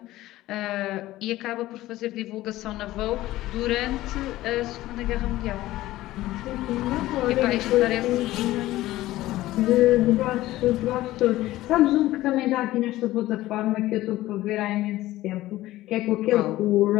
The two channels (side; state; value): right; quieter; 16.2 dB